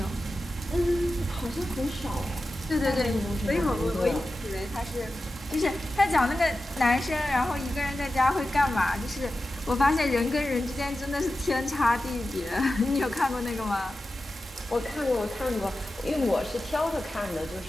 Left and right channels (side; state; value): both; normal; correlation 0.93